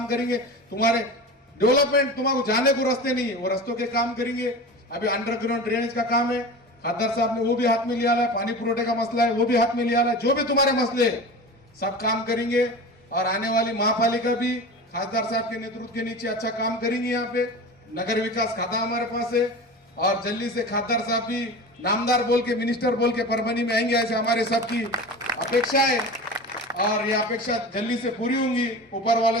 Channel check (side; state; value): both; normal; correlation 0.32